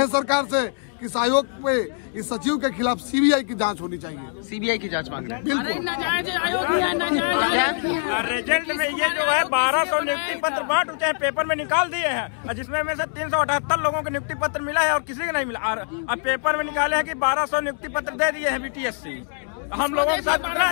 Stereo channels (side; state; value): right; silent; 63 dB below the other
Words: सरकार से कि इस आयोग पे इस सचिव के खिलाफ सीबीआई की जांच होनी चाहिए। सीबीआई की जांच मांग रहे हैं? बिल्कुल। रिजल्ट में ये जो है 1200 नियुक्ति पत्र बांट उठे पेपर में निकाल दिए हैं, जिसमें में से 378 लोगों को नियुक्ति पत्र मिला है और किसी को नहीं मिला। अब पेपर में निकाले हैं कि 1200 नियुक्ति पत्र दे दिए हैं बीटीएससी। हम लोगों के साथ कितना